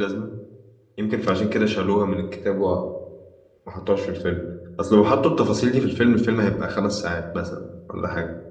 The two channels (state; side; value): identical; both; correlation 1.00